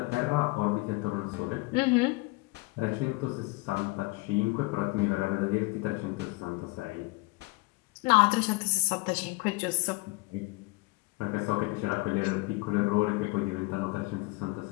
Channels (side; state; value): right; quieter; 24.8 dB